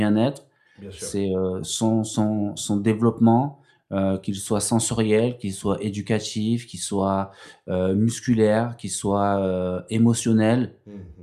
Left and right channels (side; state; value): both; identical; correlation 1.00